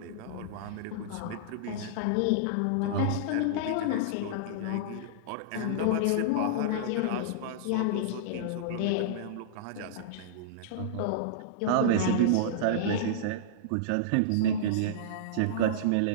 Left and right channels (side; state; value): both; different; correlation -0.02